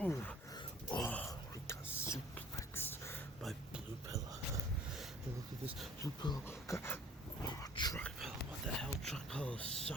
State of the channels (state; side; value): normal; both; correlation 0.52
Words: Oh, we got suplexed by blue pillow. And look at this blue pillow. Truck pillow. What the hell? Truck pillow